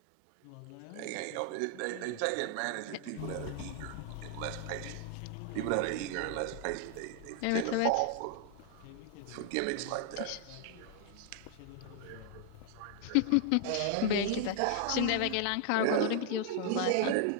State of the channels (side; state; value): both; different; correlation 0.00